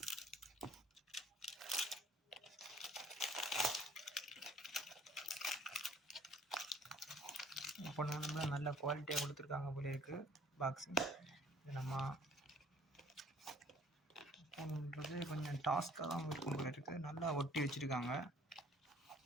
இப்போ நல்ல குவாலிட்டியாக கொடுத்துருக்காங்க போல இருக்குது பாக்ஸிங். இது நம்ம பண்ணுறது கொஞ்சம் டாஸ்க்காக தான் இருக்கும் போல இருக்குது. நல்லா ஒட்டி வச்சுருக்காங்க.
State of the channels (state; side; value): normal; both; correlation 0.56